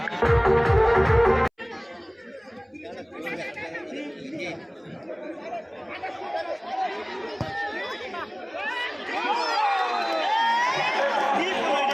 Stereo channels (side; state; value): both; identical; correlation 1.00